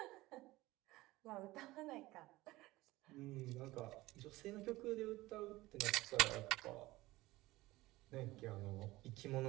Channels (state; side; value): quieter; left; 18.9 dB